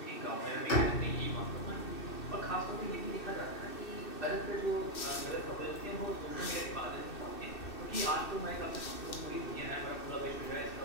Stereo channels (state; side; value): late; right; 2.6 ms